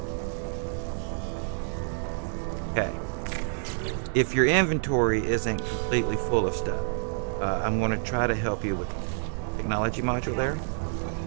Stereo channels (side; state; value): left; silent; digital silence